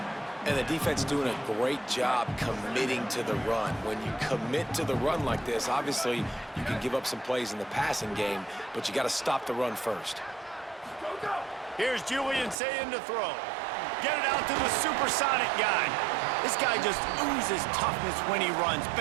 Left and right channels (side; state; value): left; drops out; at 12.6 s